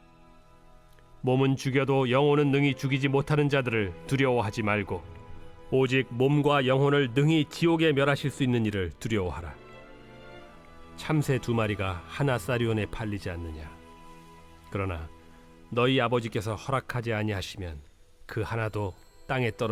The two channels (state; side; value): identical; both; correlation 1.00